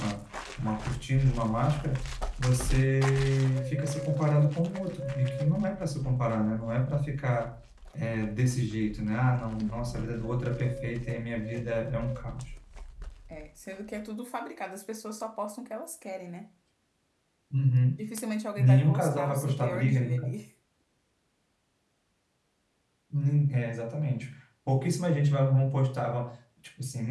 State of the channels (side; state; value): both; identical; correlation 1.00